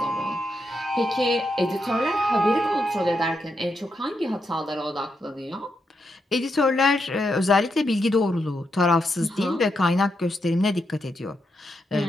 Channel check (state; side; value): normal; both; correlation 0.83